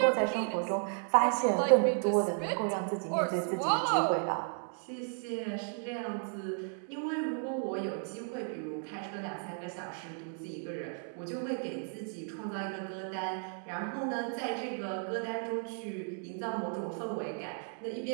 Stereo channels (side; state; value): left; silent; 55 dB below the other